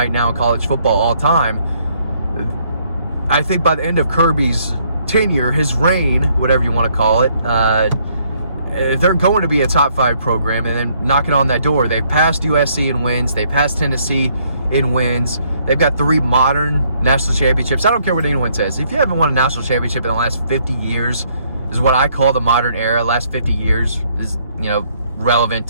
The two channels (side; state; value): both; inverted; correlation -0.67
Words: now in college football all time. I think by the end of Kirby's tenure, his reign, whatever you want to call it, they're going to be a top 5 program. And then knocking on that door, they've passed USC in wins. They passed Tennessee in wins. They've got 3 modern national championships. I don't care what anyone says. If you haven't won a national championship in the last 50 years, is what I call the modern era. Last 50 years is, relevant